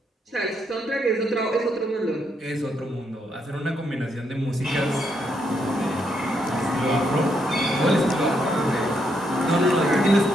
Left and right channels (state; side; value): normal; both; correlation 0.77